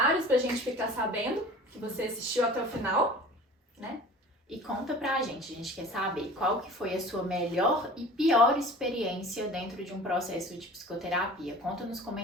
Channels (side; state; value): both; normal; correlation 0.42